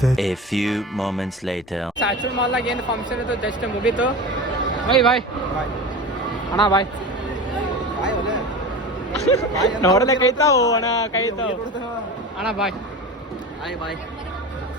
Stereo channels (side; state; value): both; normal; correlation 0.30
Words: A few moments later. ಸ್ಯಾಚುಲ್ ಮಾಲ್ನಾಗ ಏನು ಫಂಕ್ಷನ್ ಇತ್ತು ಜಸ್ಟ್ ಮುಗೀತು. ಬಾಯ್ ಅಣ್ಣ ಬಾಯ್ ನೋಡಲೆ ಕೈತಾವು ಅಣ್ಣ ಕೈತಾವು ಅಣ್ಣ ಬಾಯ್